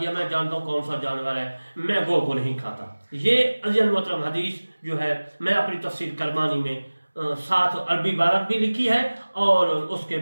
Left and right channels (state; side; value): inverted; both; correlation -1.00